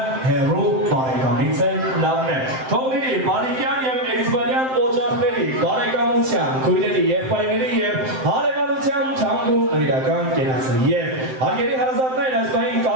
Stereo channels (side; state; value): left; late; 7.7 ms